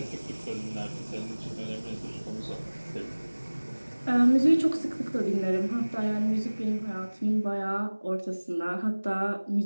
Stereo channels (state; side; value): inverted; both; correlation -1.00